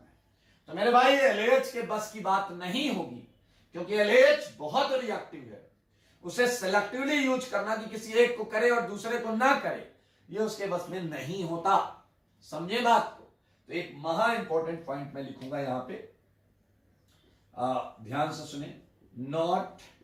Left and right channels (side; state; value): both; identical; correlation 1.00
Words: तो मेरे भाई LAH के बस की बात नहीं होगी, क्योंकि LAH बहुत रिएक्टिव है। उसे सेलेक्टिवली यूज करना कि किसी एक को करे और दूसरे को ना करे, ये उसके बस में नहीं होता। समझे बात को? तो एक महा इंपॉर्टेंट पॉइंट मैं लिखूंगा यहां पे, ध्यान से सुने। नॉट,